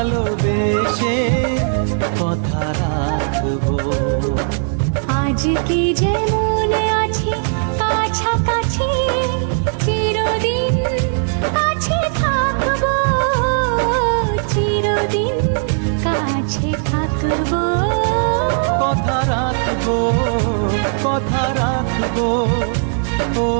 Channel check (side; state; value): left; silent; digital silence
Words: কথা রাখবো। আজকে যেমন আছি কাছাকাছি, চিরদিন কাছে থাকবো, চিরদিন কাছে থাকবো। কথা রাখবো, কথা রাখবো, ও